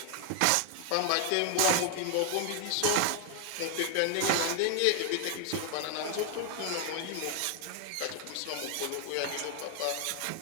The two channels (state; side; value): different; both; correlation 0.00